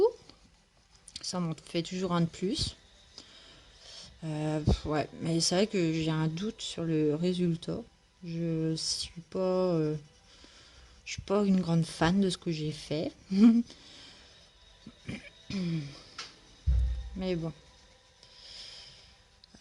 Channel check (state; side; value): identical; both; correlation 1.00